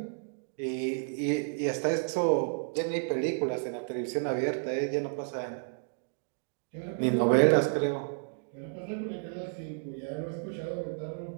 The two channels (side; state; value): left; silent; digital silence